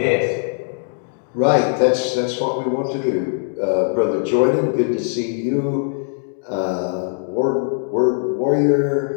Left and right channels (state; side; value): silent; right; digital silence